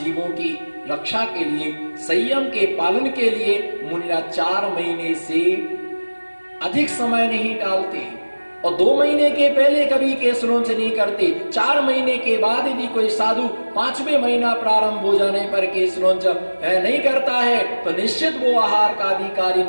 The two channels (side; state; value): both; inverted; correlation -1.00